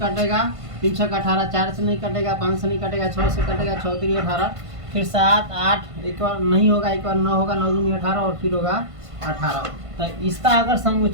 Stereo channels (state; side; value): late; left; 1.5 ms